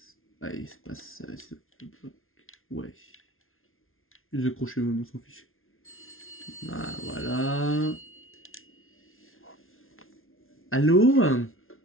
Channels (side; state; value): right; late; 0.61 ms